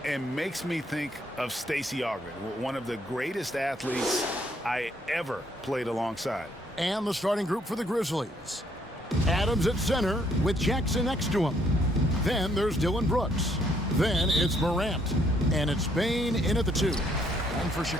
And makes me think of Stacey Augmon, one of the greatest athletes I ever played alongside. And the starting group for the Grizzlies. Adams at center with Jackson next to him. Then there's Dylan Brooks. Then it's Morant. And it's Bane in at the 2. And for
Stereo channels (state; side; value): normal; both; correlation 0.68